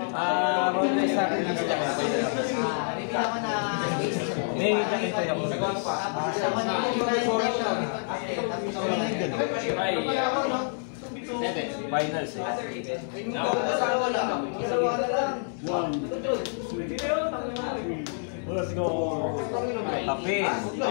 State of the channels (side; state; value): right; silent; 60 dB below the other